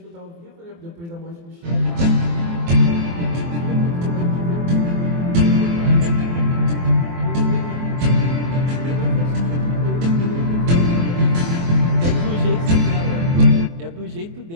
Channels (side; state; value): left; late; 24 ms